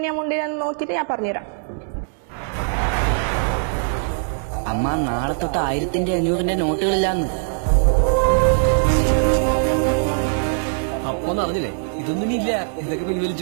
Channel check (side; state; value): left; silent; digital silence